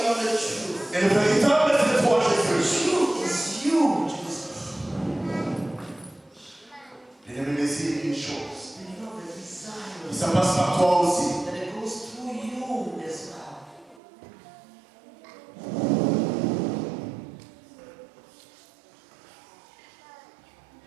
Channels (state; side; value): drops out; left; at 14.0 s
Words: Et le véritable, c'est toi, Jésus. L'ennemi désire une chose. Et ça passe par toi aussi.